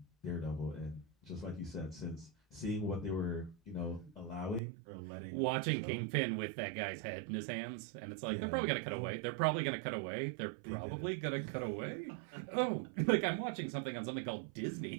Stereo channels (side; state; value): left; drops out; at 4.6 s